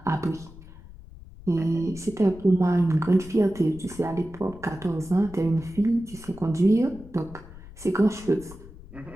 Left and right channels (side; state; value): left; noise; rumble, 18 dB below the sound